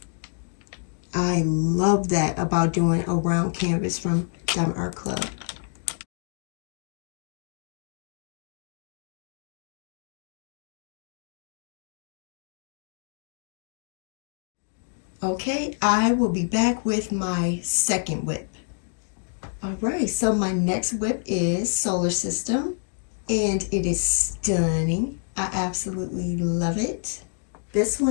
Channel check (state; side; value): silent; right; digital silence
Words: I love that about doing a round canvas from Diamond Art Club. Okay, I will be back with my second WIP. All right, so my next WIP is Solar System, and it is stunning. I absolutely love it. This